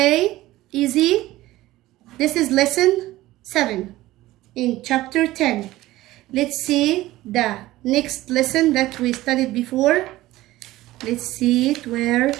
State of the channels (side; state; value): left; quieter; 16.8 dB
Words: easy. This is lesson 7 in chapter 10. Let's see the next lesson that we studied before. Let's see it where